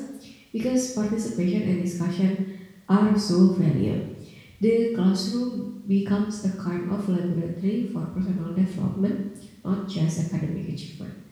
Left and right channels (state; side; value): identical; both; correlation 1.00